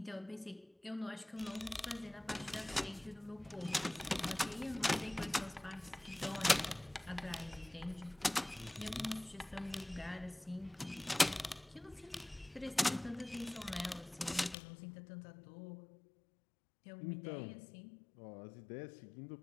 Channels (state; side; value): drops out; right; at 14.6 s